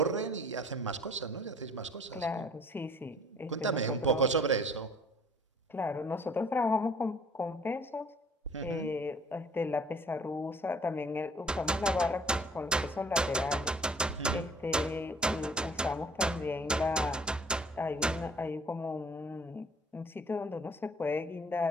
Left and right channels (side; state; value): both; normal; correlation 0.55